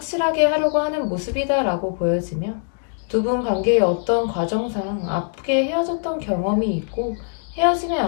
하려고 하는 모습이다라고 보여지며 두 분 관계의 어떤 과정상 아프게 헤어졌던 경험이 있고 헤어짐의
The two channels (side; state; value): right; silent; 64 dB below the other